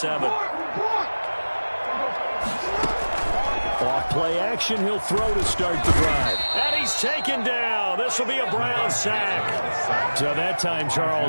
Off play action, he'll throw to start the drive. And he's taken down. This will be a Brown sack. So that time,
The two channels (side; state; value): both; inverted; correlation -1.00